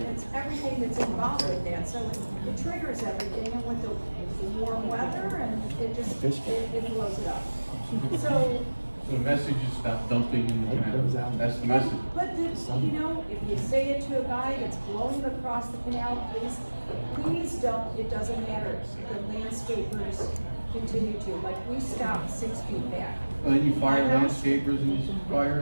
it's everything that's involved with that, so it triggers everything, and with the warm weather, and it just, it blows it up. So, The message is stop dumping in the canal. That's the message. but the, you know, if you say it to a guy that's blowing across the canal, please don't, it doesn't matter. The landscapers continue to, like, we stopped 6 feet back. Well, then you fire My house- landscapers and you fire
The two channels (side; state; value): both; inverted; correlation -1.00